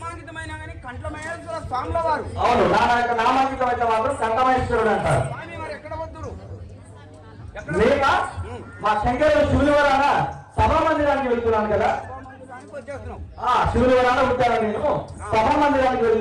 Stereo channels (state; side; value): identical; both; correlation 1.00